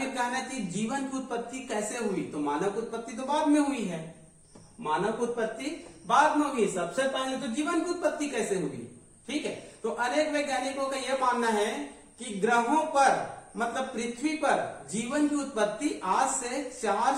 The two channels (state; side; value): identical; both; correlation 1.00